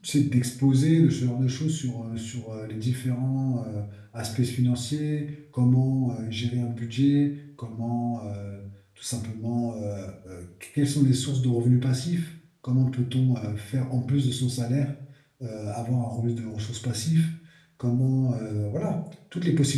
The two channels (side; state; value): both; identical; correlation 1.00